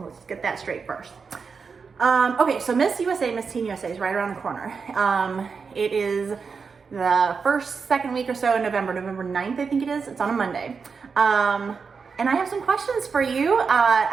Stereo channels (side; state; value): left; quieter; 5.4 dB